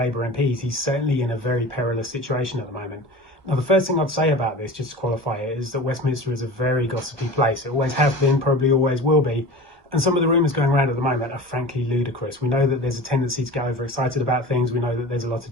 MPs. He's certainly in a very perilous situation at the moment. Now, the first thing I'd say about this, just to qualify it, is that Westminster is a very gossipy place. It always has been, probably always will be. And some of the rumours going around at the moment are frankly ludicrous. We know that there's a tendency to get overexcited about things. We know that there's a lot of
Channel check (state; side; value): late; left; 1.1 ms